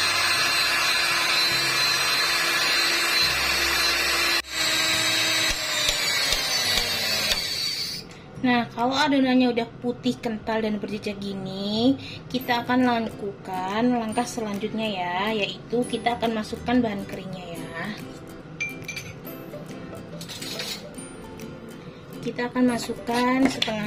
Nah, kalau adonannya udah putih, kental, dan berjejak gini, kita akan lakukan langkah selanjutnya ya, yaitu kita akan masukkan bahan keringnya ya. kita akan masukkan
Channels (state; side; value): identical; both; correlation 1.00